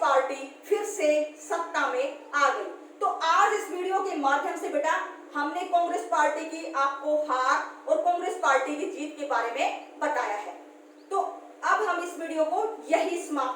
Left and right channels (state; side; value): identical; both; correlation 1.00